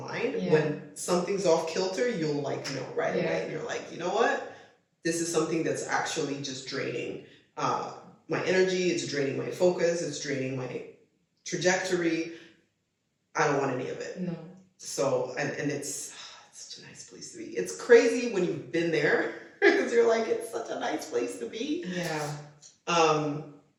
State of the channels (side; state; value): both; identical; correlation 1.00